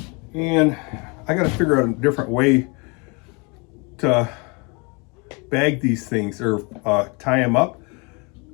and I got to figure out a different way to bag these things, or tie them up,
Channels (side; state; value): right; quieter; 30.8 dB